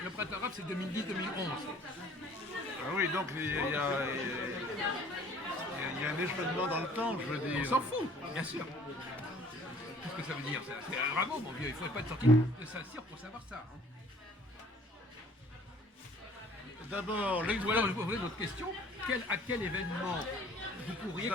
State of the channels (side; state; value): both; normal; correlation 0.54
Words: Le printemps arabe, c'est 2010-2011. Ah oui, donc il y a un échelonnement dans le temps, je veux dire. On s'en fout, bien sûr. Qu'est-ce que ça veut dire? C'est bravo, mon vieux, il ne faudrait pas être sorti de Saint-Cyr pour savoir ça. Hein. D'abord, Ou alors, je vous poser une autre question. À quel événement vous pourriez